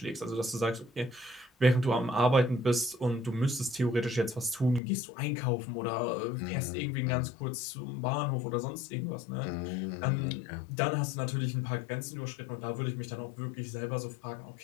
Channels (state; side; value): drops out; right; at 4.8 s